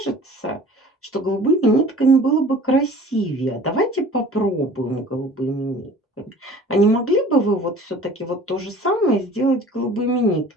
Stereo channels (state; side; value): normal; both; correlation 0.46